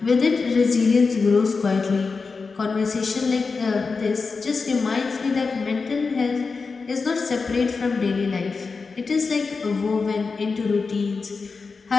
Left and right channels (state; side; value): quieter; right; 4.6 dB